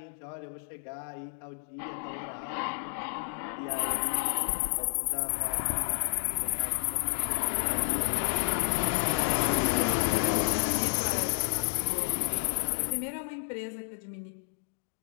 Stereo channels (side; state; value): right; silent; digital silence